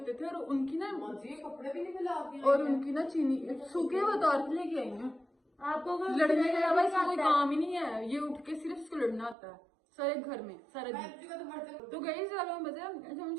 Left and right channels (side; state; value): left; drops out; at 9.3 s